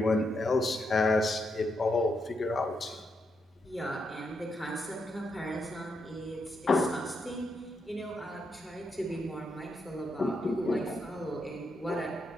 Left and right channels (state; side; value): normal; both; correlation 0.81